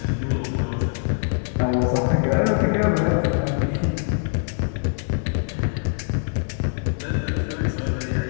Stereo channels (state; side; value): silent; right; 63 dB below the other